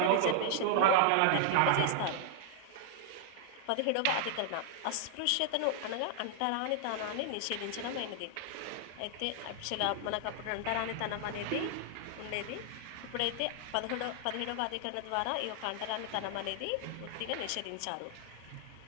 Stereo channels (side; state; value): both; different; correlation 0.00